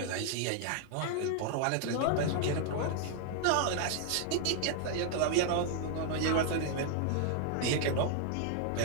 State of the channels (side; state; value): both; different; correlation 0.00